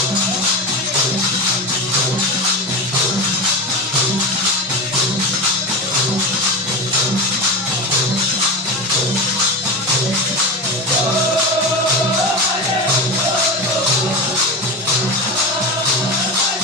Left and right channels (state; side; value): normal; both; correlation 0.22